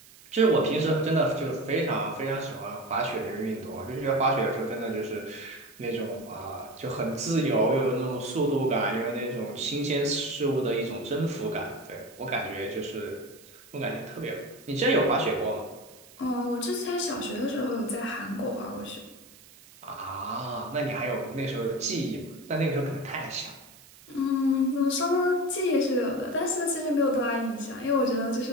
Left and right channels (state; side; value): noise; right; hiss, 23 dB below the sound